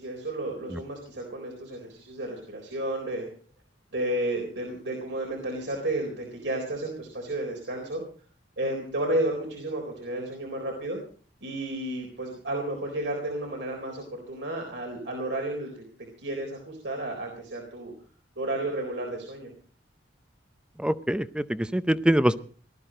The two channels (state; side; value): normal; both; correlation 0.38